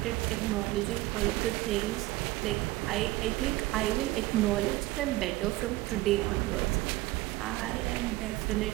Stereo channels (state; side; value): quieter; left; 18.5 dB